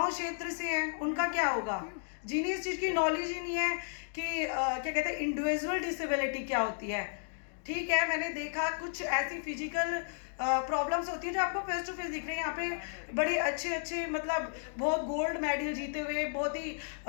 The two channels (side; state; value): right; silent; digital silence